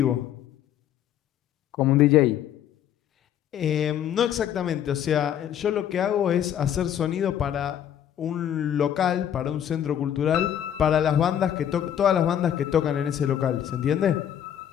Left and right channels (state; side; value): quieter; right; 10.0 dB